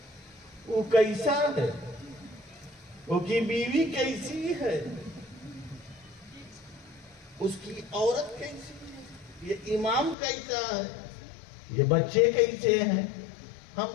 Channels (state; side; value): drops out; right; at 10.2 s